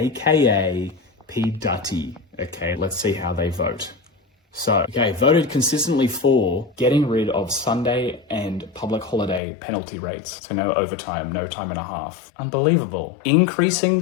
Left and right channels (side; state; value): right; drops out; at 9.4 s